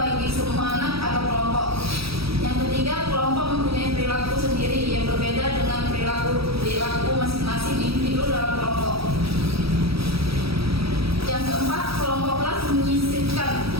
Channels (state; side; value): late; left; 0.77 ms